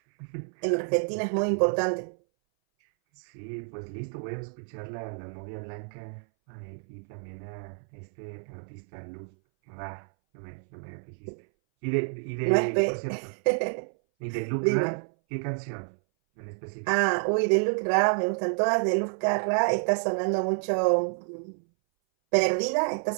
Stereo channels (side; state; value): left; silent; 59 dB below the other